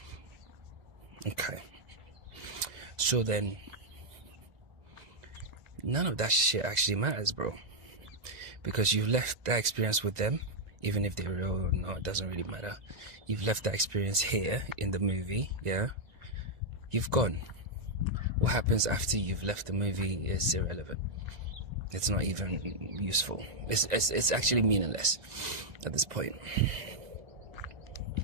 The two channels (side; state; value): left; late; 2.0 ms